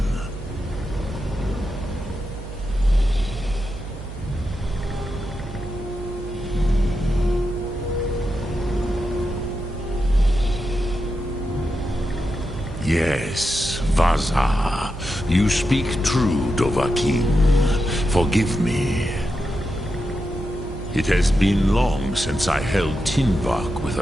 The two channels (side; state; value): right; noise; hum, 11 dB below the sound